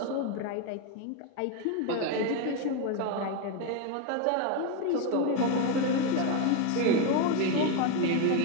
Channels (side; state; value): both; different; correlation 0.02